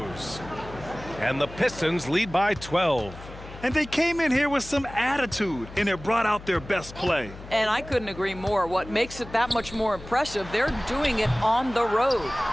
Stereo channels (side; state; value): left; noise; hum, 15 dB below the sound